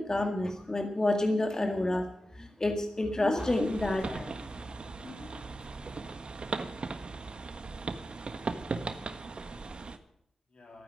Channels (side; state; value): both; normal; correlation 0.91